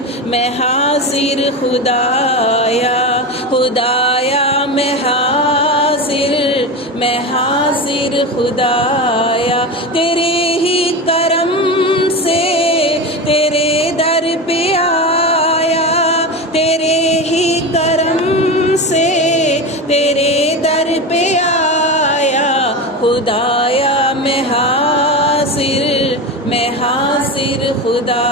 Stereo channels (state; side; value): normal; both; correlation 0.22